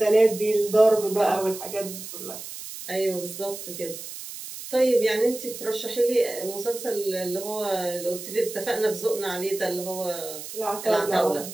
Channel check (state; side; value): noise; right; hiss, 11 dB below the sound